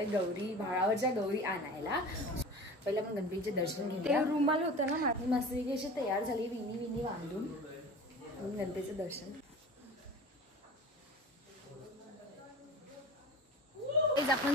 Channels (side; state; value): both; normal; correlation 0.37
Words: गौरी भाळावरच्या गौरी आणायला. पहिले आपण गणपतीचे दर्शन घेऊया. रुमाल होता ना माझी मस्तपैकी अशी तयार झाली विनी बांधून गणपतीचं दर्शन. आपण